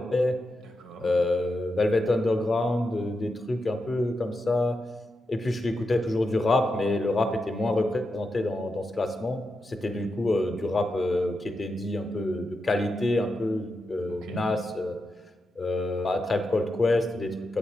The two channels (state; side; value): normal; both; correlation 0.87